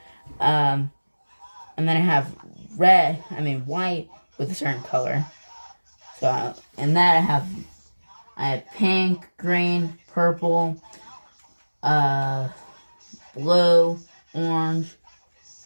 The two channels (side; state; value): both; inverted; correlation -1.00